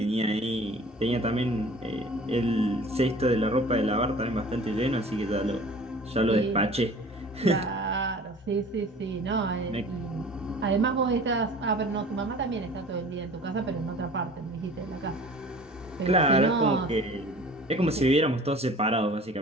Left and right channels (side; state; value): both; normal; correlation 0.45